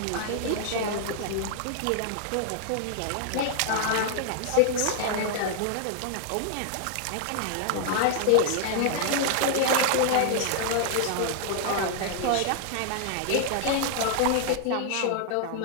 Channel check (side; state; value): both; different; correlation -0.01